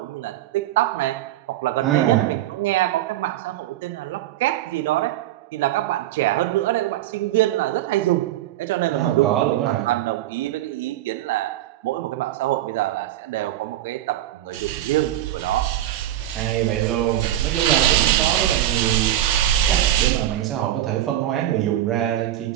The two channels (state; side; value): quieter; left; 13.2 dB